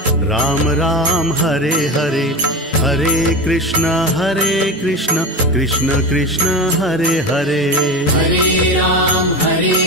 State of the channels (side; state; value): both; normal; correlation 0.24